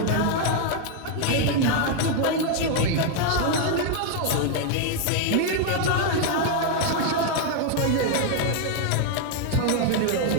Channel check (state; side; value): different; both; correlation 0.00